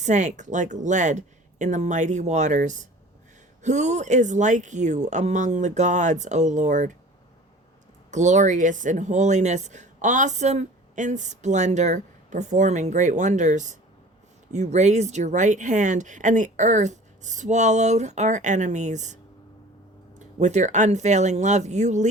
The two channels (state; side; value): normal; both; correlation 0.44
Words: like lead in the mighty waters. Who is like you among the gods, O Lord? Glorious in holiness, awesome in splendor, performing great wonders. You raised your right hand, and the earth swallowed our enemies. With your unfailing love, you